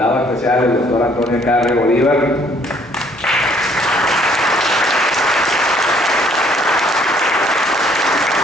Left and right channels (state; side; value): normal; both; correlation 0.62